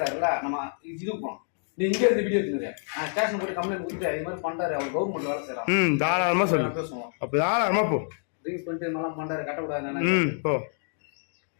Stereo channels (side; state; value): right; silent; 60 dB below the other